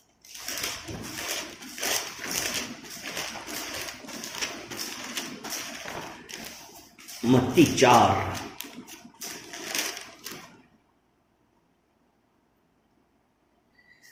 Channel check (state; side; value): identical; both; correlation 1.00